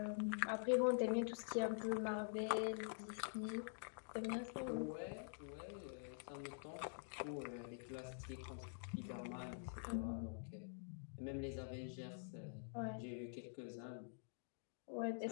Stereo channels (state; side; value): silent; right; digital silence